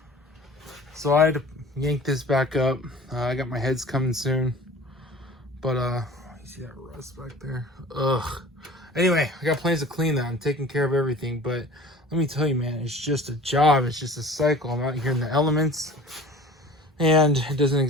So I had to yank this back up. I got my heads coming soon. But, you see that rust back there? Ugh. Anyway, I got plans to clean that. I'm taking care of everything. But let me tell you, man, it's just a job. It's just a cycle. I'm out here in the elements. And it doesn't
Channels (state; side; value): normal; both; correlation 0.44